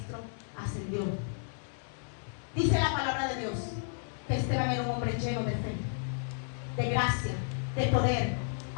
ascendió. Dice la palabra de Dios que Esteban era un hombre lleno de fe, de gracia, de poder,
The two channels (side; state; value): right; silent; digital silence